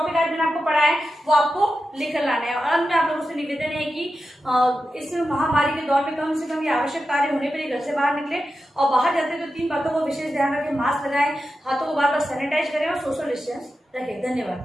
आज मैंने आपको पढ़ा है वो आपको लिख कर लाना है। और अंत में आप लोगों से निवेदन है कि इस महामारी के दौर में कम से कम ये आवश्यक कार्य होने पर ही घर से बाहर निकले, और बाहर जाते तो 3 बातों को विशेष ध्यान रखें। मास्क लगाएं, हाथों को बार बार सैनिटाइज करें और सोशल डिस्टेंस रखें।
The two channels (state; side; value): normal; both; correlation 0.91